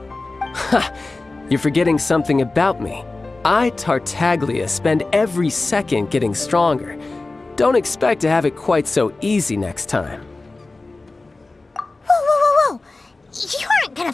Ha! You're forgetting something about me. I, Tartaglia, spend every second getting stronger. Don't expect to have it quite so easy next time. Whoa. You aren't gonna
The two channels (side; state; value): right; quieter; 3.3 dB